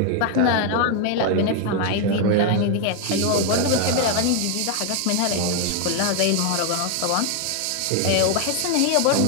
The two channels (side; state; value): both; different; correlation 0.01